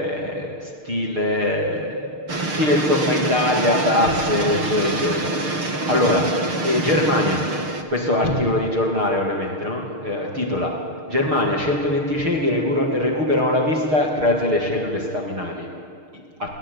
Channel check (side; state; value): left; late; 6.5 ms